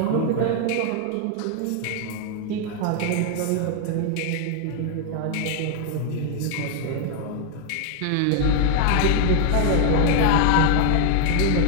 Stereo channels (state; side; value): different; both; correlation 0.00